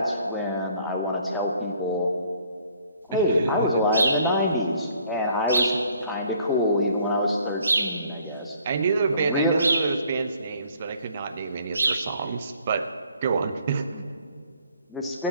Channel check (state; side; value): inverted; both; correlation -0.61